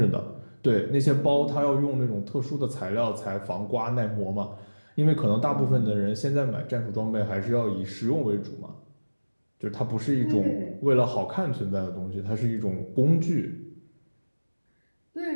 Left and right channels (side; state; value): both; inverted; correlation -1.00